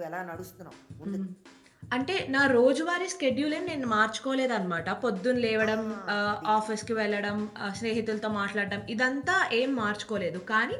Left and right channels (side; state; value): both; identical; correlation 1.00